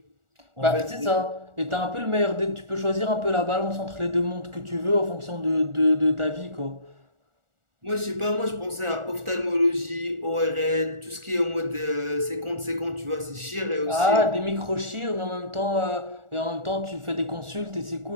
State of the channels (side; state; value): left; late; 1.4 ms